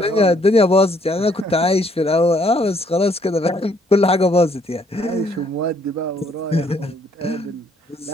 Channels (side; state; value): both; normal; correlation 0.66